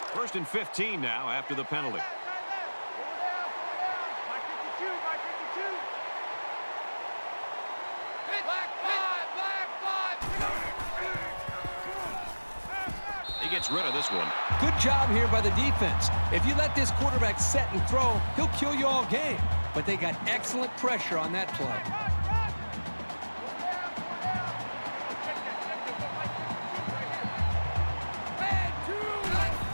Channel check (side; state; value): both; inverted; correlation -1.00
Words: First and 15 now after the penalty. Mike 52, Mike 52. Black five. He gets rid of this one. Good job here by the defense. If you let this quarterback set and throw, he'll kill you all game. But they got excellent pressure on that play.